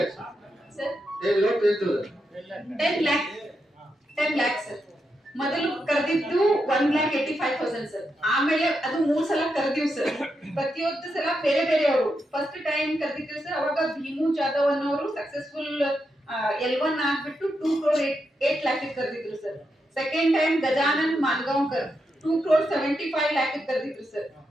ಸರ್. 10 lakh sir. ಮೊದಲು ಕರೆದಿದ್ದು 1,85,000 ಸರ್. ಆಮೇಲೆ ಅದು 3 ಸಲ ಕರೆದಿವ್ ಸರ್. ಪ್ರತಿಯೊಂದು ಸಲ ಬೇರೆ ಬೇರೆ ಅವರು. ಫಸ್ಟ್ ಟೈಮ್ ಕರೆದಿದ್ದೀವಿ ಸರ್, ಅವಾಗ ಭೀಮು ಜಾಧವ್ ಅನ್ನೋರು ಸಕ್ಸಸ್ಫುಲ್ L1 ಆಗ್ಬಿಟ್ಟು 2,08 lakh ಕರೆದಿದ್ರು sir. Second time Gajanan Mangaonkar 2,75 lakh ಕರೆದಿದ್ರು sir.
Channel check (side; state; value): both; normal; correlation 0.85